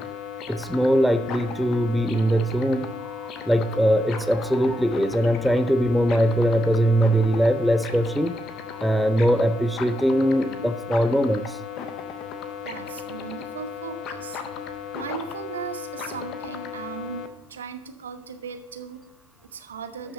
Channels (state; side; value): normal; both; correlation 0.83